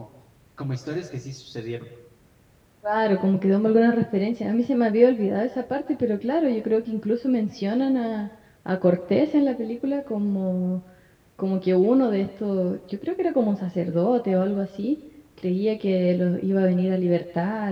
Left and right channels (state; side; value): identical; both; correlation 1.00